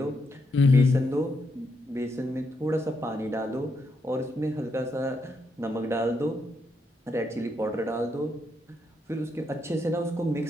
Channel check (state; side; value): normal; both; correlation 0.79